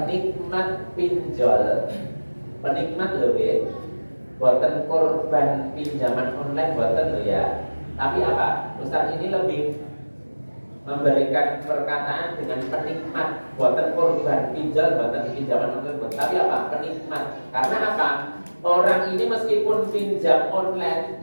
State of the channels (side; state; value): both; inverted; correlation -1.00